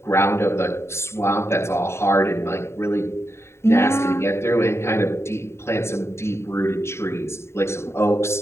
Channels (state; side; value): late; right; 0.13 ms